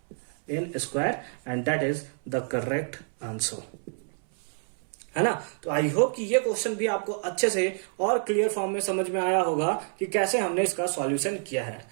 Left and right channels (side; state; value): left; silent; 59 dB below the other